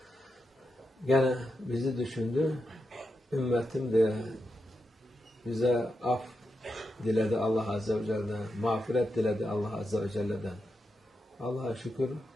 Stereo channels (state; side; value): normal; both; correlation 0.86